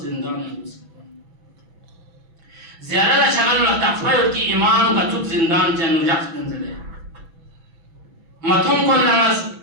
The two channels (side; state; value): left; late; 6.1 ms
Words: زندان لسکان زیادہ شغل تقفیل کی امام کا چوب زندان جنو جخت نزده متون کن نماز